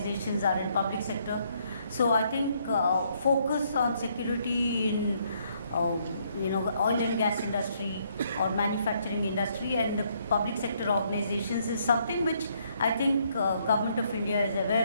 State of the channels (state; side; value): inverted; both; correlation -0.70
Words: are in public sector. So I think focus on security in oil and gas industry or manufacturing industry and the public sector organizations is something which I think Government of India is